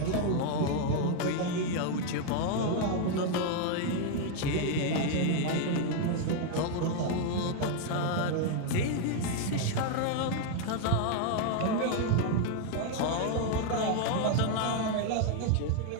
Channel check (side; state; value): both; different; correlation 0.00